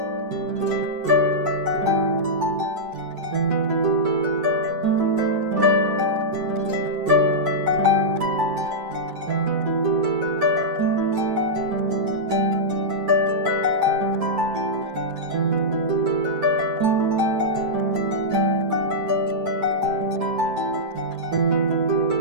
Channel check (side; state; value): left; late; 10 ms